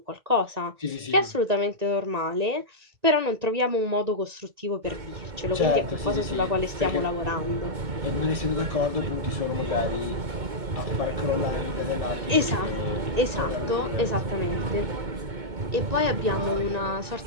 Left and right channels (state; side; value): late; left; 1.9 ms